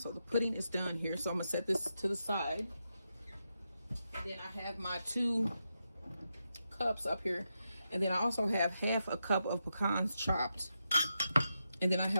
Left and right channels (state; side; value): inverted; both; correlation -0.86